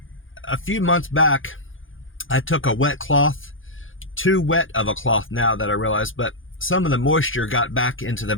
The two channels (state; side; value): late; right; 0.58 ms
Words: a few months back, I took a wet cloth, too wet of a cloth now that I realize, but some of the moisture got back into the